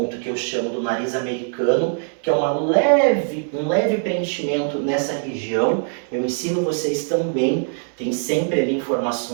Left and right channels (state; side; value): silent; left; 64 dB below the other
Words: que eu chamo do nariz americano, que é um leve preenchimento nessa região. Eu ensino vocês também, tem sempre ali